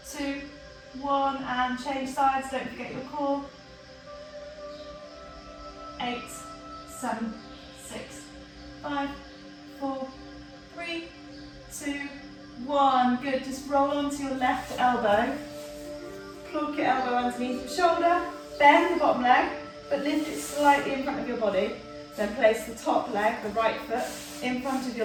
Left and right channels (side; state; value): both; identical; correlation 1.00